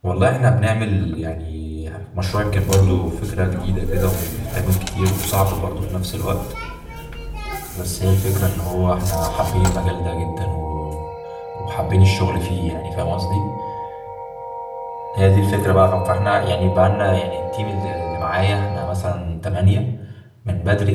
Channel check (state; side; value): identical; both; correlation 1.00